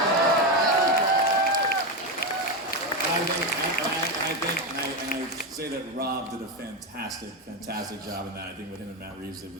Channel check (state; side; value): normal; both; correlation 0.11